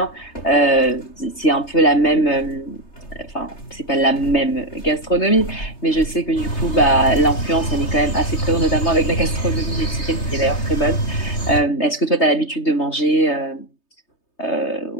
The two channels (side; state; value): right; late; 3.3 ms